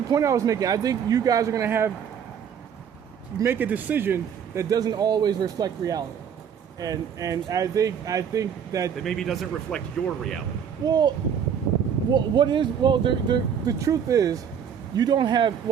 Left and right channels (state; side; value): quieter; left; 8.0 dB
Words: point I was making. I think you guys are going to make a decision that doesn't always reflect reality. And I think that maybe doesn't reflect your reality. The truth is, you don't have,